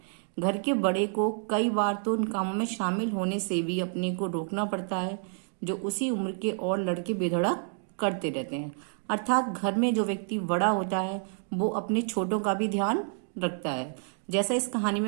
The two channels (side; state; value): left; silent; 57 dB below the other